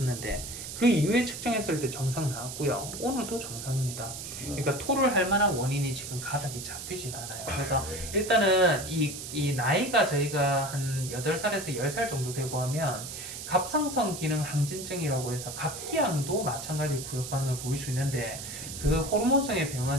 그 이후에 측정했을 때 정상 나왔고요. 오늘도 정상입니다. 그러니까 토를 할 만한 원인이 지금 가닥이 잡히지가 않아요. 그래서 일단은 이 나이가 저희가 한 8살에서 10살 정도 되고 하면 갑상선 기능 항진증이라고 해서 갑기양도 마찬가지 구역 반응을 보일 수 있는데 그 호르몬성의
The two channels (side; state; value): right; noise; hiss, 9 dB below the sound